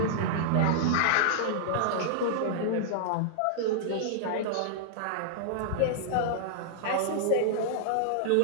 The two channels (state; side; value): different; both; correlation -0.01